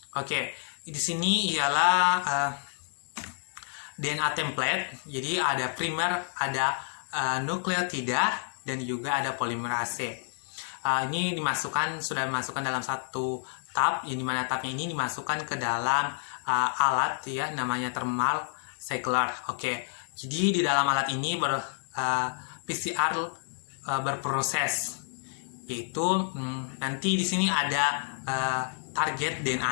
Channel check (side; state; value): right; silent; digital silence